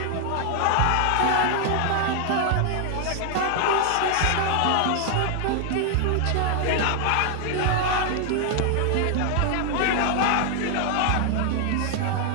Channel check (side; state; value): both; different; correlation 0.00